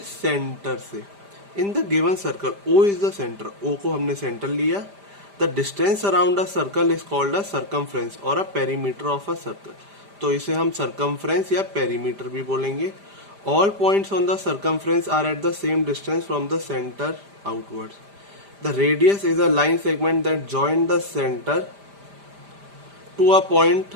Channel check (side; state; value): left; late; 5.0 ms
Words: सेंटर से। In the given circle O is the centre, O को हमने सेंटर लिया। The distance around a circle is called a circumference और a perimeter of a circle. तो इसे हम सर्कमफ्रेंस या पेरीमीटर भी बोलेंगे। All points on the circumference are at the same distance from the centre outwards. The radius is a line segment that join the centre to a